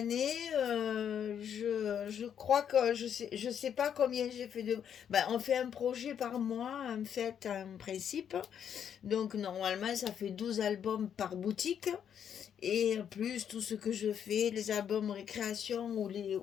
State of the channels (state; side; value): quieter; right; 8.6 dB